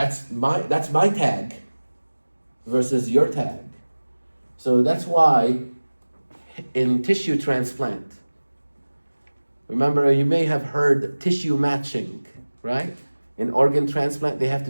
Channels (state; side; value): inverted; both; correlation -1.00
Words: my tag versus your tag. So that's why in tissue transplant, remember you may have heard tissue matching, right? In organ transplant, they have to